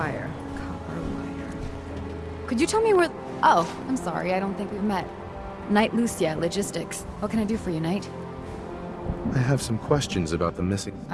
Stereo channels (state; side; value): identical; both; correlation 1.00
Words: Copper wire. Could you tell me where... Oh, I'm sorry. I don't think we've met. Knight Lucia, Logistics. What can I do for you, Knight? I have some questions about the missing...